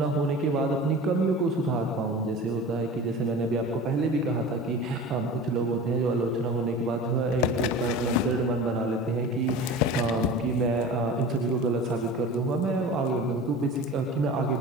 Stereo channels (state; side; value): normal; both; correlation 0.36